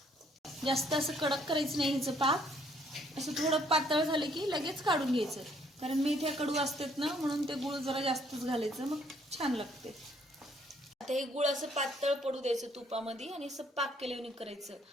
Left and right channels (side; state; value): both; normal; correlation 0.65